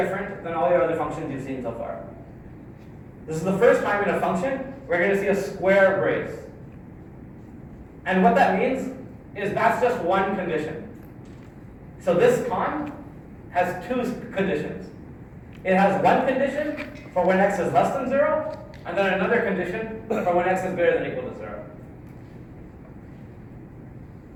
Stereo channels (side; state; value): both; identical; correlation 1.00